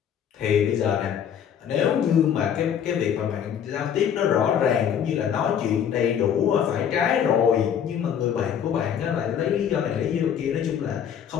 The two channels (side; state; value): right; quieter; 8.6 dB